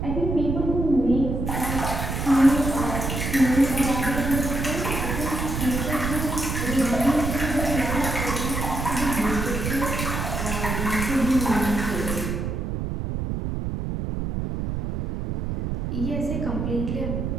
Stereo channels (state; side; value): noise; right; rumble, 3 dB below the sound